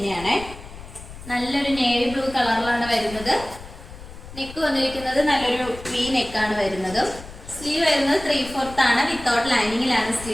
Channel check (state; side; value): noise; left; rumble, 15 dB below the sound